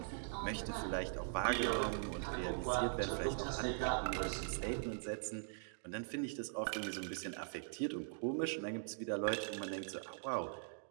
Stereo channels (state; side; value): silent; left; digital silence